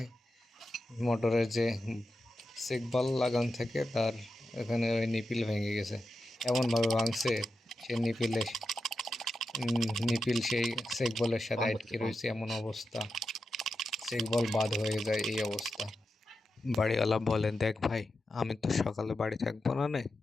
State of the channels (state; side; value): normal; both; correlation 0.89